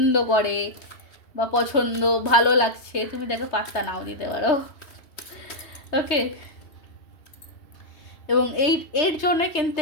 করে বা পছন্দ ভালো লাগছে, তুমি তাকে পাত্তা নাও দিতে পারো। ওকে, এবং এর জন্য কিন্তু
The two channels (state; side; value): late; right; 3.2 ms